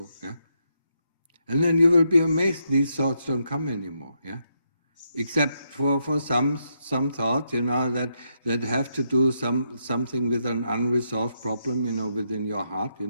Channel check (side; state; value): both; inverted; correlation -0.80